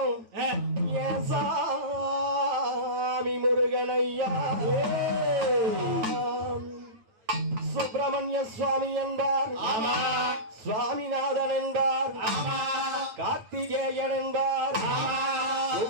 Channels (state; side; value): late; left; 9.1 ms